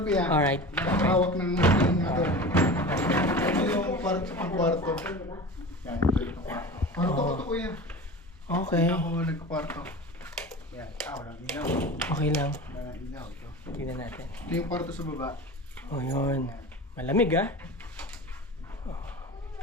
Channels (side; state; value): both; normal; correlation 0.33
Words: po yan. Alright. Nakahawak ng ano. Ito yung kwarto. Yan, ito yung kwarto. Kwarto ko to kuya. Okay. Ako nagkakwarto. Yan, walang ilaw. Okay lang. Walang ilaw ito. Tingnan natin. Ito yung kwarto sa baba. Oh, yun. Malamig, ah.